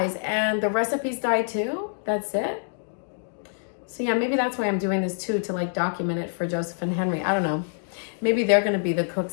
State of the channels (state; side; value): silent; right; digital silence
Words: and the recipes die too? That's it. So yeah, maybe that's why I'm doing this too, to like document it for Joseph and Henry. I don't know. Maybe they're going to be the